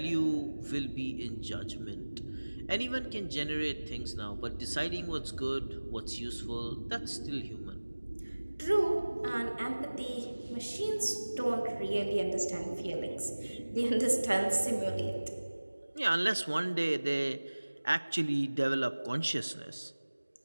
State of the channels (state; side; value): inverted; both; correlation -1.00